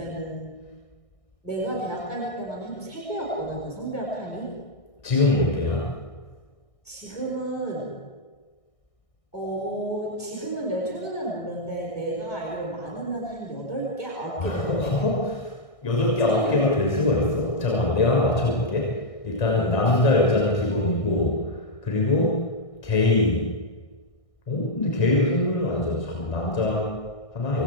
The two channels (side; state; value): right; late; 1.6 ms